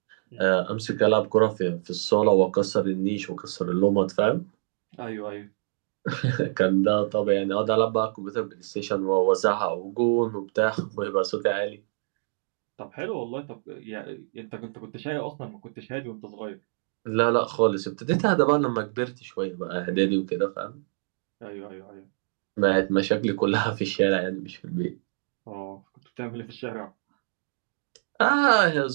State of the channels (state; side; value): silent; left; digital silence